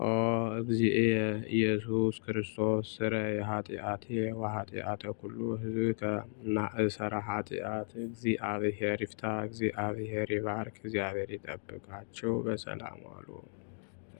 እግዚእየ ኢየሱስ ክርስቶስ ስረይ ኃጢአቴ ወኃጢአተ ኩሉ ሕዝብከ ማእሰረ ኃጢአት እግዚአብሔር ይፍታ፣ እግዚአብሔር ይባርክ፣ እግዚአብሔር ይጠብቃችሁ። በሰላም ዋሉ።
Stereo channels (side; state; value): right; silent; digital silence